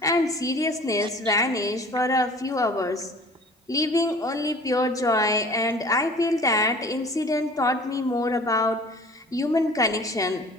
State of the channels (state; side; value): normal; both; correlation 0.46